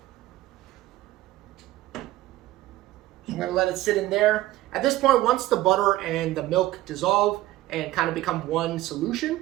I'm gonna let it sit in there. At this point, once the butter and the milk dissolve and kind of become one solution,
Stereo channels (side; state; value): left; quieter; 16.1 dB